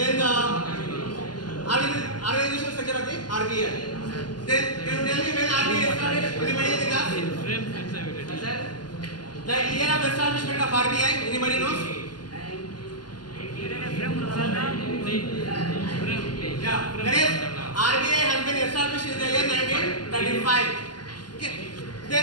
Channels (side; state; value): right; late; 0.70 ms